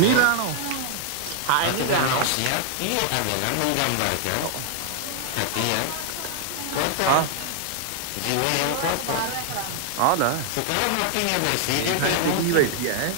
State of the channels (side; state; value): both; different; correlation 0.00